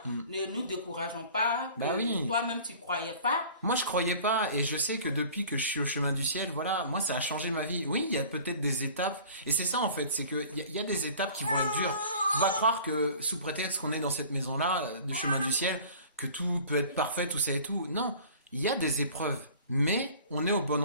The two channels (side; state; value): both; inverted; correlation -0.45